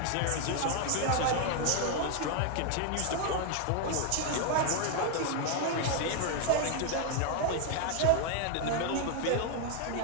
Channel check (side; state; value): both; different; correlation 0.00